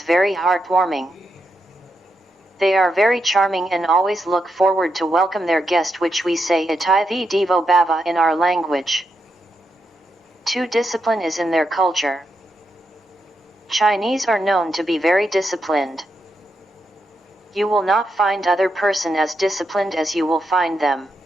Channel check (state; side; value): normal; both; correlation 0.84